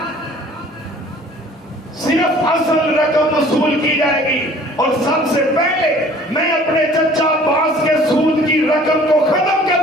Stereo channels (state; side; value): normal; both; correlation 0.51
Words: صرف اصل رقم وصول کی جائے گی، اور سب سے پہلے میں اپنے چچا عباس کے سود کی رقم کو ختم